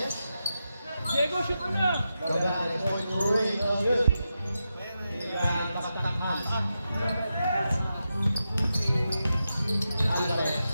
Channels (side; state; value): both; inverted; correlation -0.89